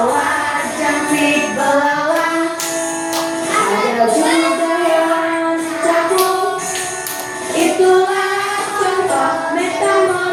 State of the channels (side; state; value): both; identical; correlation 1.00